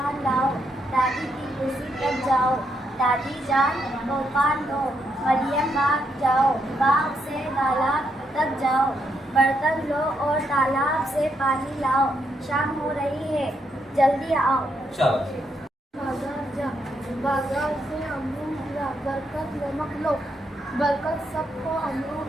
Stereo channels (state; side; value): normal; both; correlation 0.78